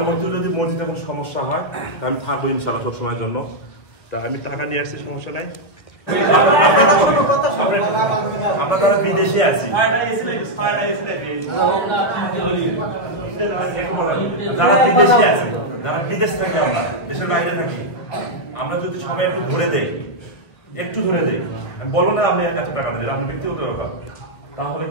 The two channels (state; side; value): late; right; 2.0 ms